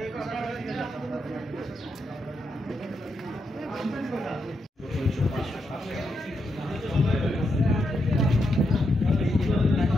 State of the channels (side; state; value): both; normal; correlation 0.82